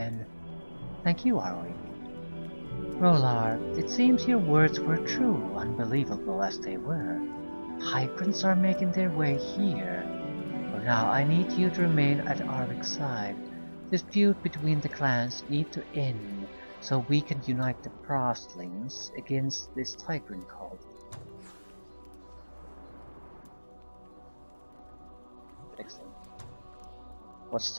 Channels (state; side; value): inverted; both; correlation -1.00